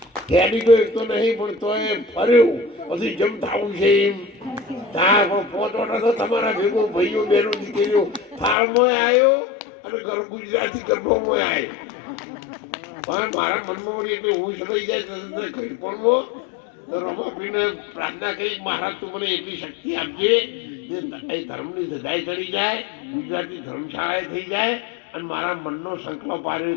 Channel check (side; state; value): right; drops out; at 8.6 s